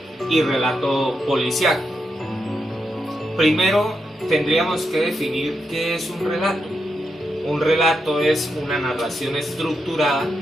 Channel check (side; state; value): both; normal; correlation 0.84